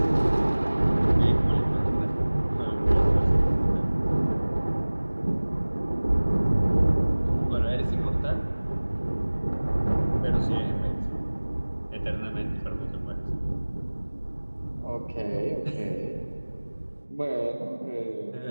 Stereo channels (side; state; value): both; inverted; correlation -1.00